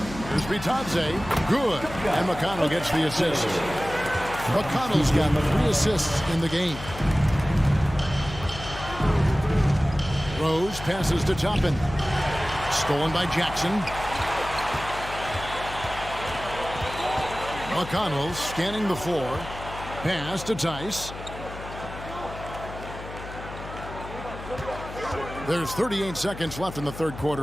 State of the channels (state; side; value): noise; left; hum, 12 dB below the sound